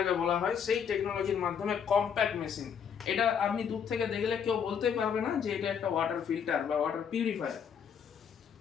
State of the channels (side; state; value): right; quieter; 7.4 dB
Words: বলা হয়, সেই টেকনোলজির মাধ্যমে কম্প্যাক্ট মেশিন। এটা আপনি দূর থেকে দেখলে কেউ বলতে পারবে না যে এটা একটা ওয়াটার ফিল্টার বা ওয়াটার পিউরিফায়ার।